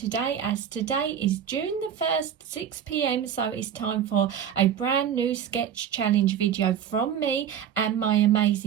as today is June the 1st, 6 p.m, so it's time for a brand new sketch challenge video from me and my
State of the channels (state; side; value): quieter; left; 8.8 dB